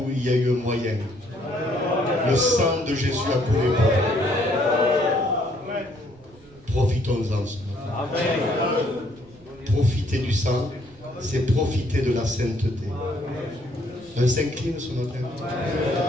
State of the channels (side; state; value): right; noise; rumble, 26 dB below the sound